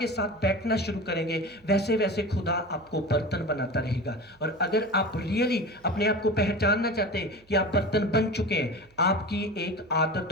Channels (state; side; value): noise; right; hum, 30 dB below the sound